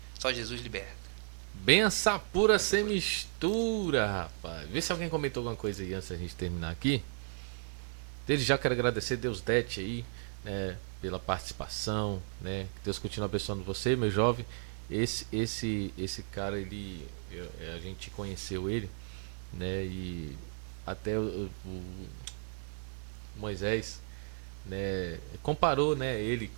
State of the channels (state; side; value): silent; left; 55 dB below the other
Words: Só Jesus liberta. Benção pura sem mistura, rapaz. Vê se alguém comentou alguma coisa aí antes da gente terminar aqui. Desde já quero agradecer Deus Dete aí, pela participação, né? Que Deus continue abençoando você, meu jovem. esse cara, a gente conheceu ele, né? E até o Moisés, né, comparou, né, ele